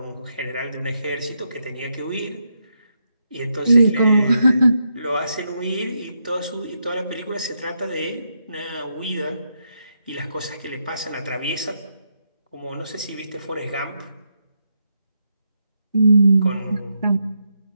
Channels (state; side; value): inverted; both; correlation -0.82